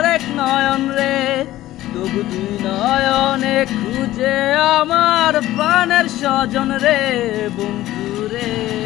নয়ন রে তবু দুই নয়নে খুঁজে আমার প্রাণের স্বজন রে বন্ধুরে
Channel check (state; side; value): quieter; right; 15.2 dB